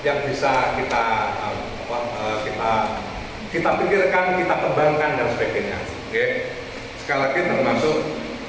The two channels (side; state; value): both; identical; correlation 1.00